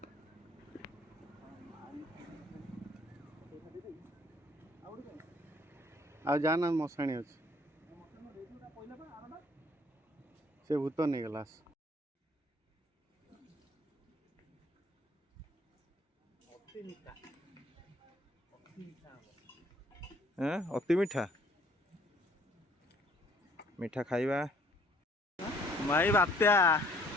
ଆଉ ଯାନା ମଶାଣି ଅଛି, ସେ ଭୂତ ନେଇଗଲା। ଅତି ମିଠା ମିଠା ଖାଇବା। ଭାଇ ବାତ୍ୟା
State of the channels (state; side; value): normal; both; correlation 0.60